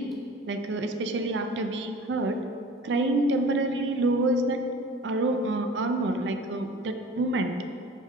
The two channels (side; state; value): both; normal; correlation 0.43